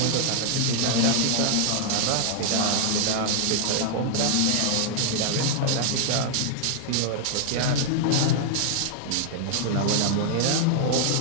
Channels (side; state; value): both; different; correlation -0.01